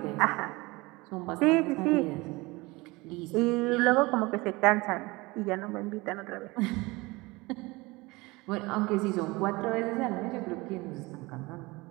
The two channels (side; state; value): left; quieter; 22.9 dB